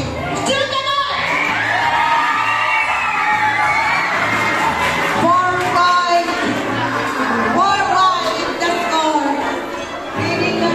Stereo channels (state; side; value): identical; both; correlation 1.00